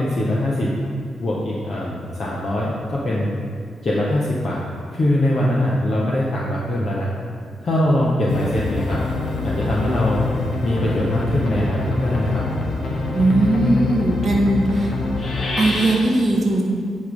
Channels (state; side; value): normal; both; correlation 0.84